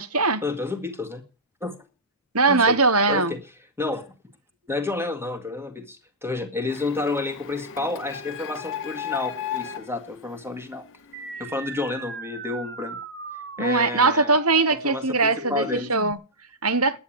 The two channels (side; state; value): both; normal; correlation -0.10